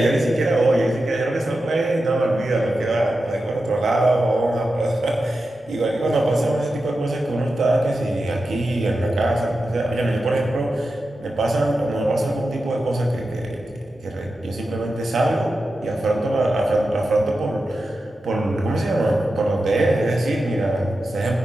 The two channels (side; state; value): both; normal; correlation 0.91